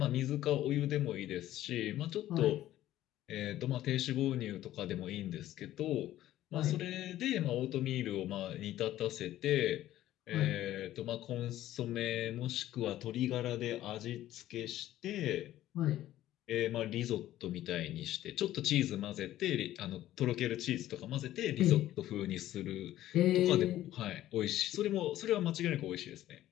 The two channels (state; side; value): quieter; right; 13.8 dB